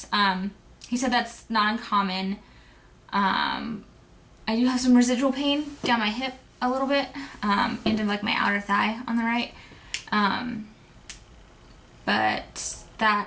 He said that's not uncommon. I do have some residual pain down my hip a little bit, into like my outer thigh on the right. But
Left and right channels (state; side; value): identical; both; correlation 1.00